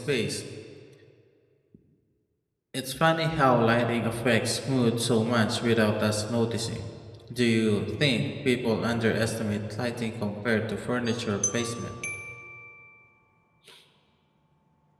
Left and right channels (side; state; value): both; identical; correlation 1.00